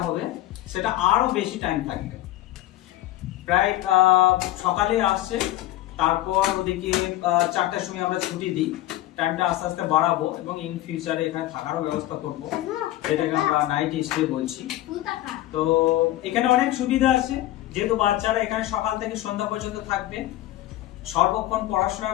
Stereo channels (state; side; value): quieter; right; 15.2 dB